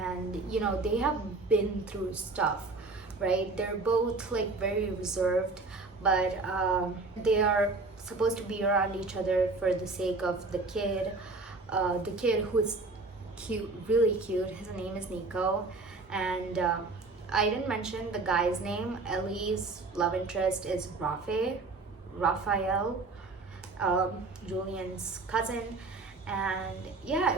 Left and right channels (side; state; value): left; quieter; 3.6 dB